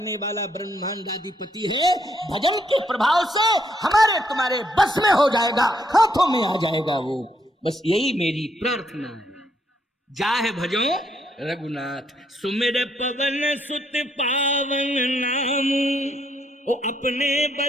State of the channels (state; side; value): normal; both; correlation 0.73